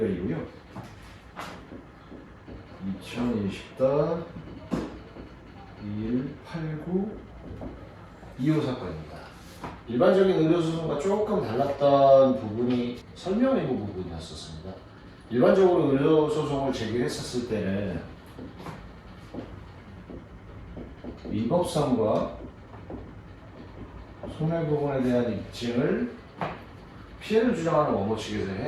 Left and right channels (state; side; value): identical; both; correlation 1.00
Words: 2020다 2189 2호 사건입니다. 일반적인 의료소송과 조금 달랐던 부분이 설명 의무 부분이었었습니다. 일반적으로 의료소송을 제기했었을 때는 위법성과 손해부분에 대한 입증을 피해를 주장하는 원고 측에서